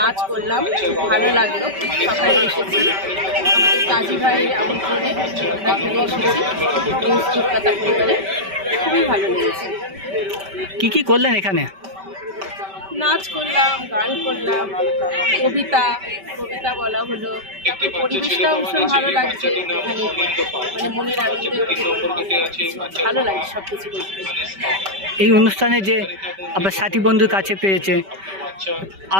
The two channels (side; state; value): left; late; 5.2 ms